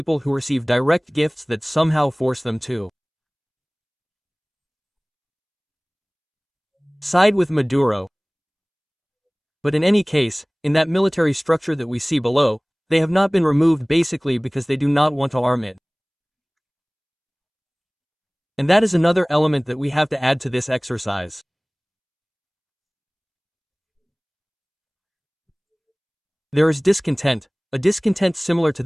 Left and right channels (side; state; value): both; identical; correlation 1.00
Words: who receive direct gifts that somehow force them to side with Maduro. But in any case, in that military structure that we see below, they have not been removed basically because they do not want to arm it. And that is another element that we have to add to this exercise. There is discontent, a discontent similar to